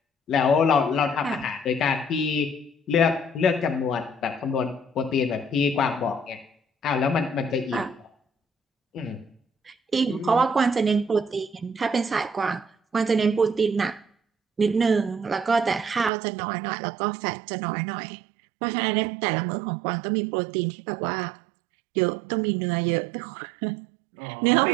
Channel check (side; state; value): left; drops out; at 16.1 s